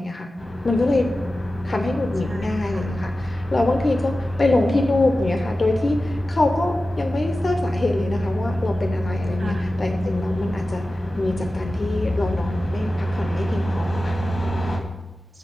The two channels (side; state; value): both; normal; correlation 0.95